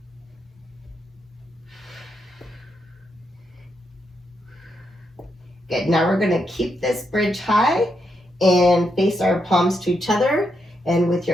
Good. Now we're going to keep this bridge high and face our palms to each other. And with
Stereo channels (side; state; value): both; normal; correlation 0.81